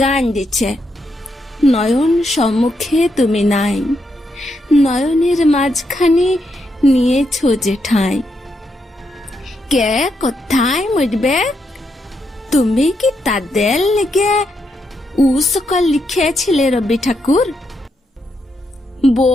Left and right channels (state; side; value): normal; both; correlation 0.81